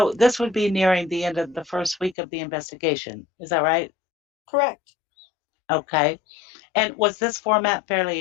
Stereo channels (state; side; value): drops out; right; at 2.1 s